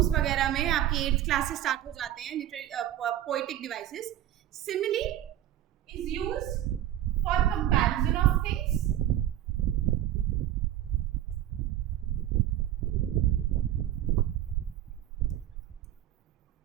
वगैरह में, आपकी 8th क्लास से स्टार्ट हो जाते हैं poetic devices. Simile is used for comparison of things,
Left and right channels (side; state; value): left; quieter; 12.4 dB